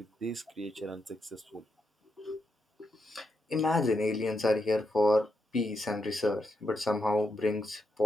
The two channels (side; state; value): both; normal; correlation 0.83